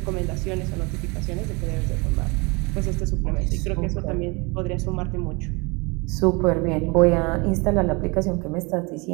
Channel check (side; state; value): left; quieter; 28.1 dB